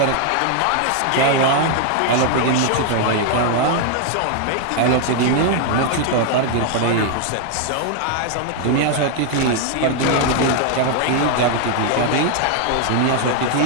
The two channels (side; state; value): both; different; correlation 0.00